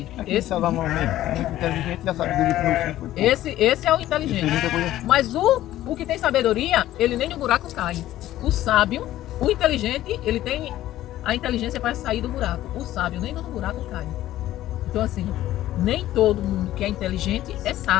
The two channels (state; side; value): quieter; right; 14.1 dB